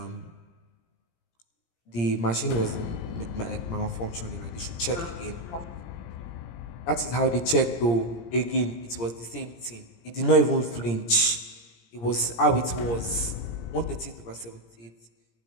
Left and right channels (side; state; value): right; late; 17 ms